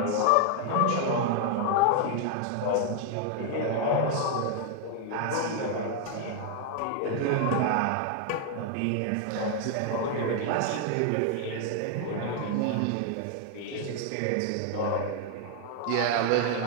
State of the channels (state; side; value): different; both; correlation 0.00